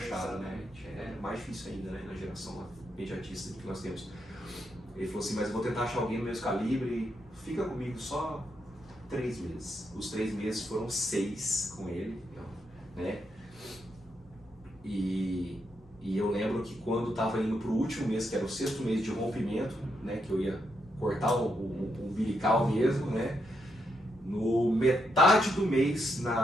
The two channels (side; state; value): both; normal; correlation 0.80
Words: né? É mais difícil ainda, né, na geração imediatista que nós temos. Ele falou assim, mas eu vou tentar achar alguém do mesmo calibre, fica comigo só 3 meses. Os 3 meses foram 6 com ele, né? E eu lembro que quando estava indo para o último mês, que era o 6º mês de rompimento, né, que eu ia cortar o umbilical mesmo, né? No metade do mês,